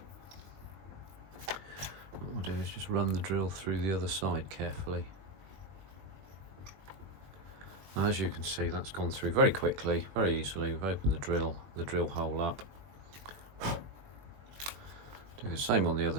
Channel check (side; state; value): left; late; 20 ms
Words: What we'll do is just run the drill through the other side carefully. Now, as you can see, that's gone through very quickly, very easily. We've opened the drill hole up. Do the same on the other